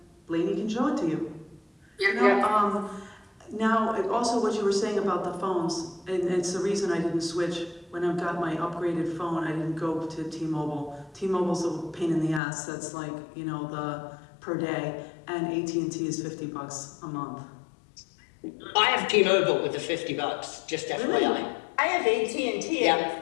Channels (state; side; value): drops out; right; at 12.4 s